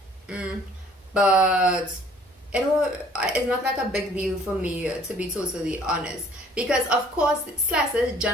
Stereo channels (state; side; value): normal; both; correlation 0.56